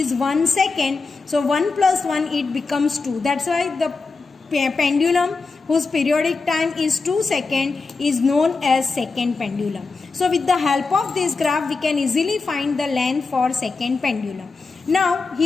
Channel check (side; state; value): right; quieter; 4.2 dB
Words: 1 second. So 1 plus 1, it becomes 2. That's why the pendulum whose periodic time is 2 seconds is known as second pendulum. So with the help of this graph, we can easily find the length for second pendulum. Now